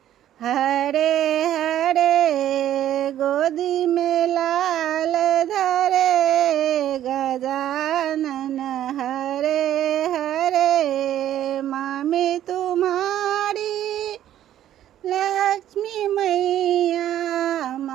हरे हरे। गोदी में लाल धरे गजानन हरे हरे। मामी तुम्हारी लक्ष्मी मैया,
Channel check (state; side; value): quieter; left; 11.8 dB